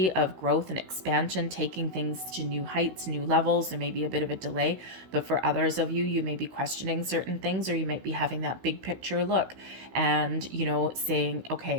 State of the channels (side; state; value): left; late; 16 ms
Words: of growth and expansion, taking things to new heights, new levels. There may be a bit of a delay, but for others of you, you may be questioning certain things, or you might be having that big picture look and, saying,